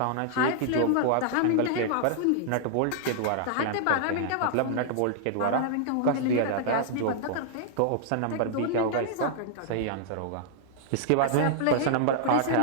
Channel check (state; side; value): different; both; correlation -0.01